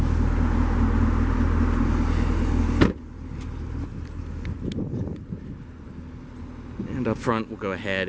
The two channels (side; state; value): both; identical; correlation 1.00